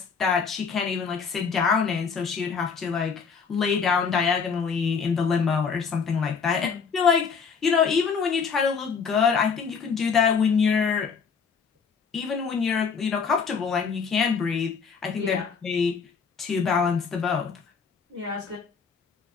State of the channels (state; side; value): quieter; right; 5.8 dB